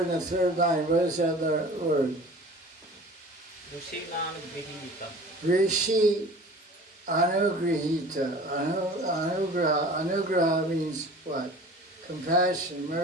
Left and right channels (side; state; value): both; normal; correlation 0.42